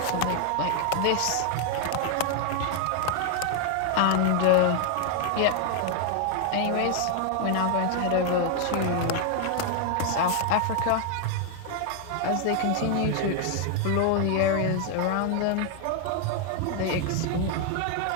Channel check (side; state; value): both; different; correlation 0.00